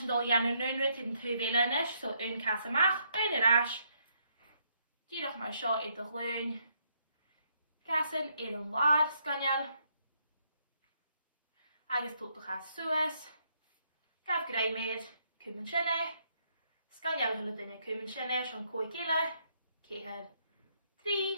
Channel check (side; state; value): both; inverted; correlation -0.73